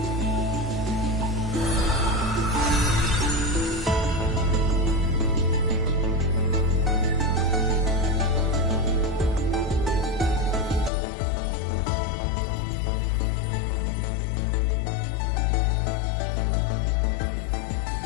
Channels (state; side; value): drops out; right; at 10.9 s